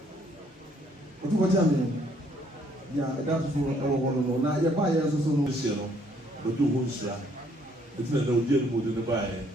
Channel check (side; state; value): both; normal; correlation 0.65